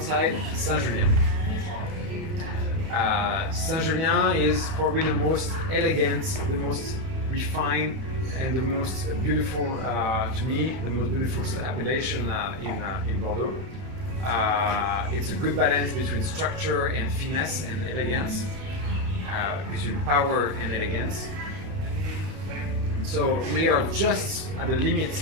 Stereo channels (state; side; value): late; left; 31 ms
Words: Saint-Julien. Saint-Julien is probably the most elegant, the most refined, and the most beautiful, to me, the most beautiful appellation in Bordeaux. It's a good balance between structure and finesse and elegance, between power and elegance. So we are just at the limit,